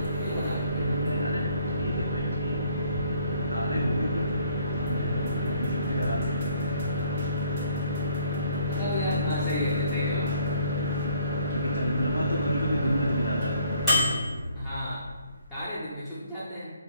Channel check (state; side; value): inverted; both; correlation -0.62